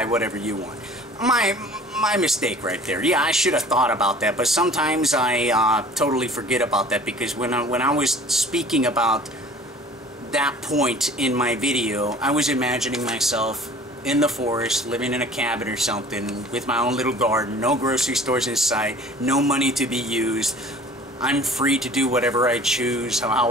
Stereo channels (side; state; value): both; normal; correlation 0.47